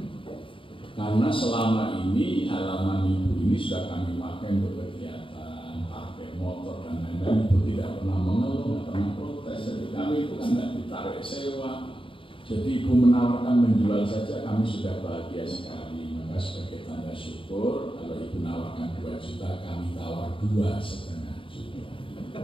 Karena selama ini halaman ibu ini sudah kami pakai untuk kegiatan, pakai motor dan lain-lain, itu tidak pernah mengeluh, tidak pernah protes. Jadi kami itu kan tidak ditarik sewa. Jadi ibu menawarkan menjual saja, kami sudah bahagia sekali. Maka sebagai tanda syukur, kalau ibu menawarkan 2 juta, kami tawar 2,5 juta.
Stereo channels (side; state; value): right; late; 0.25 ms